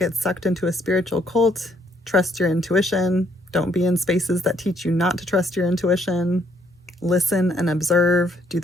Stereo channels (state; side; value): normal; both; correlation 0.69